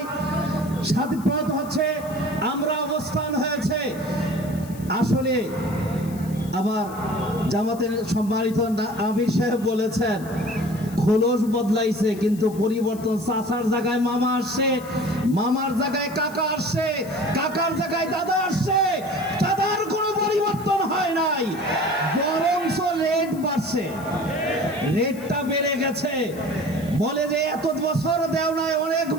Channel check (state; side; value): noise; left; hiss, 20 dB below the sound